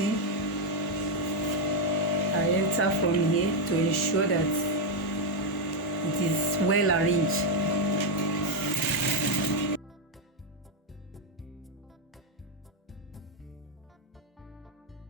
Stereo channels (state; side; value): normal; both; correlation 0.02